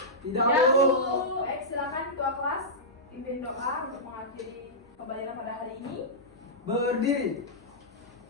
Tidak, Bu. Bu. Baik, silakan ketua kelas pimpin doa untuk mengakhiri pembelajaran pada hari ini. Berdiri.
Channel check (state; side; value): normal; both; correlation -0.13